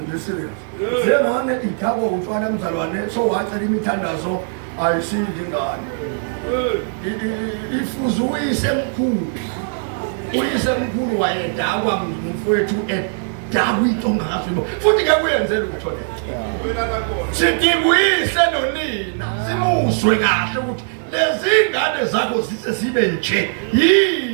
nje serious njengane ithabo utshwala mzalwane so wacela imithandazo ayisindi ingane ifuze uyise mkhulu wayedakwa ngumfowethu edakwa into ongakazwibo futhi ngeke uyenzele utho le sidibuyise nonina simuzwe kahle ukuthi lezi ingane zakho zise sibe nje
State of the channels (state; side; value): silent; left; 65 dB below the other